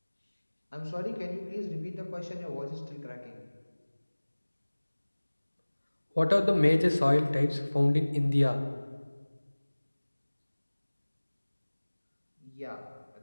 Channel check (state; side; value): inverted; both; correlation -1.00